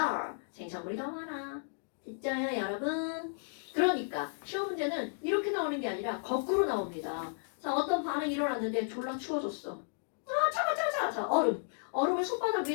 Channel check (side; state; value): right; silent; digital silence